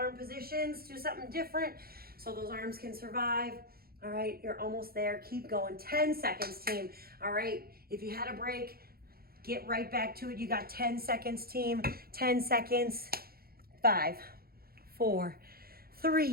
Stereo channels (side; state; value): left; late; 0.44 ms